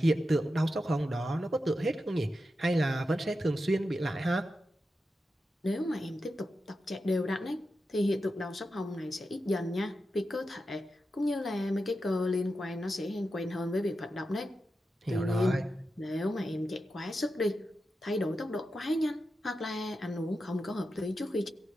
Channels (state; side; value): normal; both; correlation 0.90